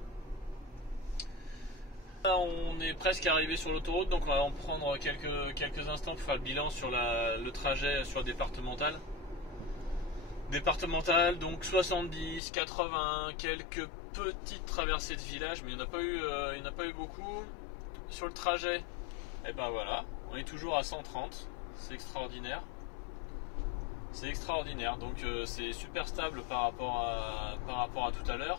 Là, on est presque arrivé sur l'autoroute, donc on va en prendre quelques instants pour faire le bilan sur le trajet sur le départemental. Départemental, donc 70, 80, quelques petites traversées de village, mais il n'y en a pas eu beaucoup. Sur le trajet, et ben voilà, on est toujours à 130, c'est extraordinaire. C'est extraordinaire, donc c'est super stable par rapport à tout à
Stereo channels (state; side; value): drops out; right; at 12.4 s